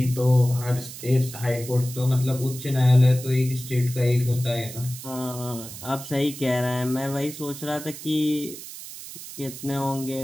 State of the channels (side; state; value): right; noise; hiss, 12 dB below the sound